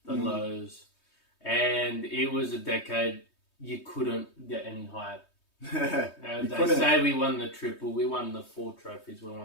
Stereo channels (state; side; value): late; right; 3.2 ms